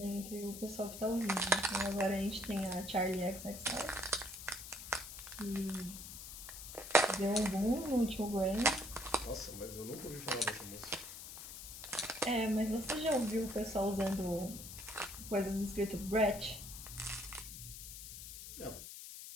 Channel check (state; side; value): noise; left; hiss, 11 dB below the sound